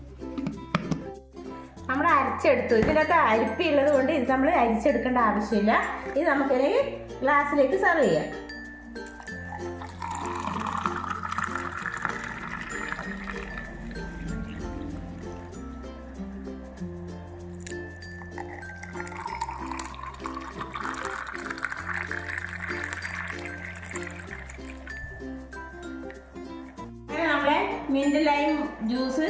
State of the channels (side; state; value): both; identical; correlation 1.00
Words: നമ്മൾ അരച്ചെടുത്തു. ഇതിനകത്ത് അരിപ്പുള്ളത് കൊണ്ട് ഇത് നമ്മൾ അരിച്ചെടുക്കേണ്ട ആവശ്യമില്ല. ഇത് നമുക്കിനി ഗ്ലാസ്സിലേക്ക് സെർവ് ചെയ്യാം. നമ്മളെ മിന്റ് ലൈം ജ്യൂസ്